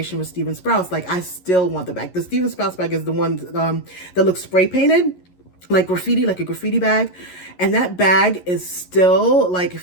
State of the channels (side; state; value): right; late; 11 ms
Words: with Steven Sprouse, like I still want the bag. The Steven Sprouse bag is the one that looks spray painted, like graffiti, like a graffiti bag. And that bag is still, like,